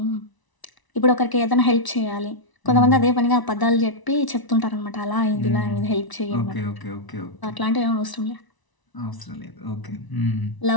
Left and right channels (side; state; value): right; late; 1.0 ms